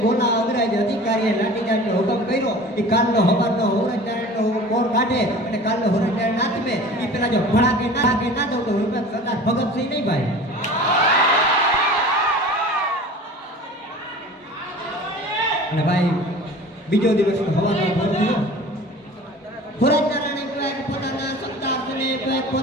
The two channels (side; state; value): both; normal; correlation 0.40